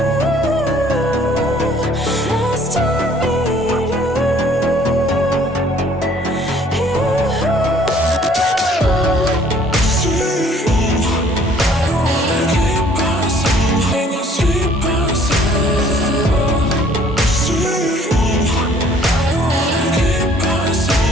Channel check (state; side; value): normal; both; correlation 0.58